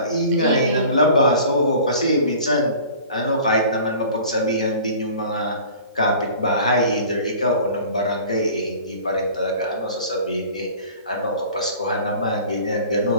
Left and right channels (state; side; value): inverted; both; correlation -0.44